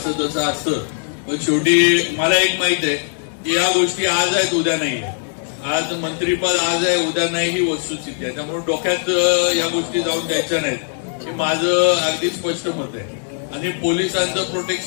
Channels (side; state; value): right; silent; digital silence